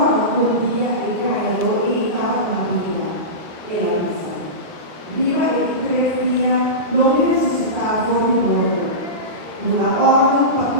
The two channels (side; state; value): left; late; 8.5 ms